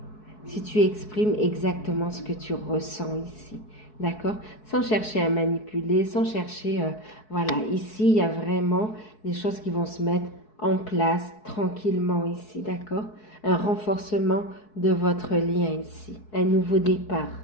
Si tu exprimes exactement ce que tu ressens ici. D'accord? Sans chercher à manipuler, sans chercher... voilà, ici, il y a vraiment des choses qui vont se mettre en place tranquillement ici. D'accord? Un renforcement de votre lien ici. Un nouveau départ.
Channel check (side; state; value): right; late; 4.7 ms